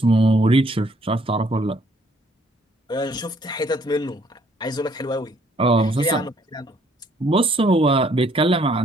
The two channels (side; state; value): both; normal; correlation 0.65